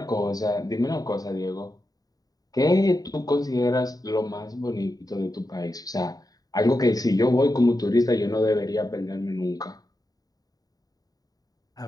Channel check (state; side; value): late; right; 0.18 ms